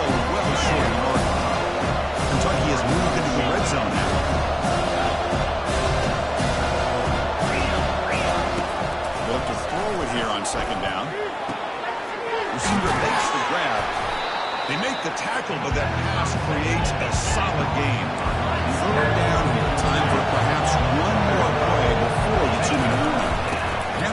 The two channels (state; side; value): identical; both; correlation 1.00